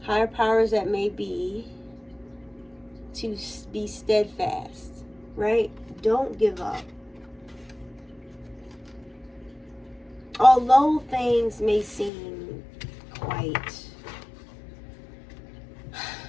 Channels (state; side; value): drops out; right; at 12.1 s